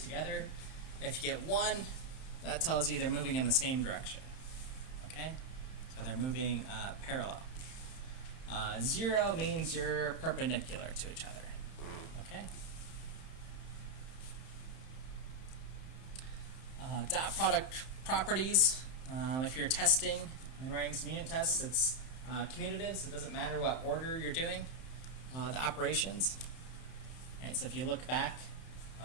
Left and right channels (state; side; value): late; right; 31 ms